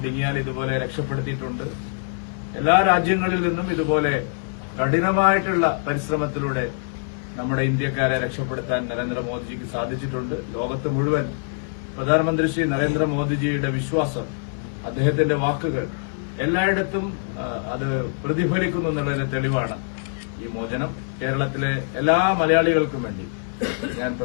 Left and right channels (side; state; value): right; silent; 61 dB below the other